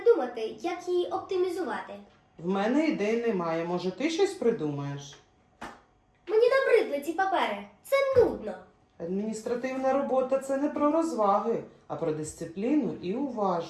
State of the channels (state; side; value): identical; both; correlation 1.00